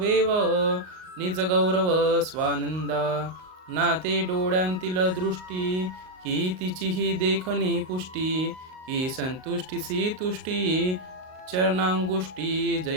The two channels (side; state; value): left; late; 38 ms